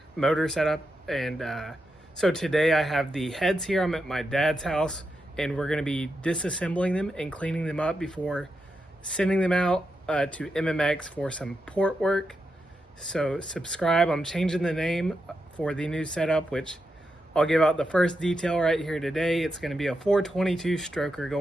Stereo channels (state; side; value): normal; both; correlation 0.86